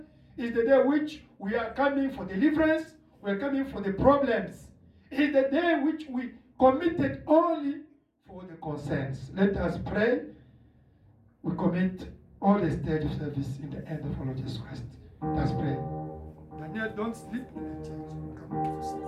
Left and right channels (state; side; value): identical; both; correlation 1.00